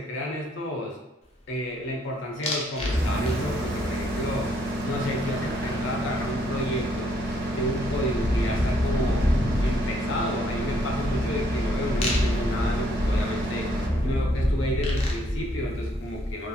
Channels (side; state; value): both; normal; correlation 0.69